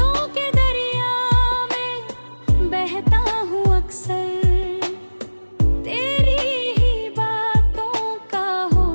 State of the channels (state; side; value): inverted; both; correlation -1.00